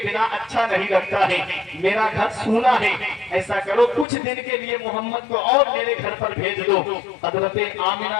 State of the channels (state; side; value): drops out; right; at 4.0 s